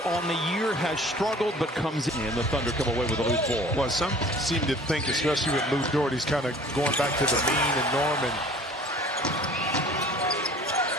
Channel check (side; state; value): both; normal; correlation 0.48